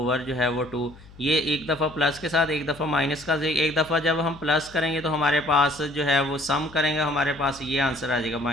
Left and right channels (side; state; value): left; noise; hum, 21 dB below the sound